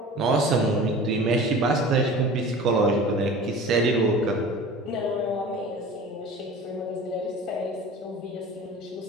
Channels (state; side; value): normal; both; correlation 0.39